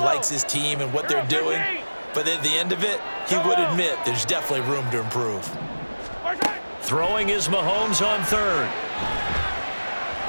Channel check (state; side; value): inverted; both; correlation -1.00